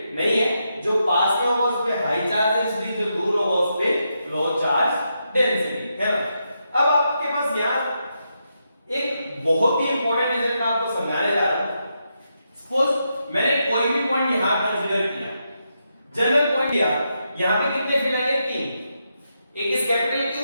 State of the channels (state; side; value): inverted; both; correlation -0.83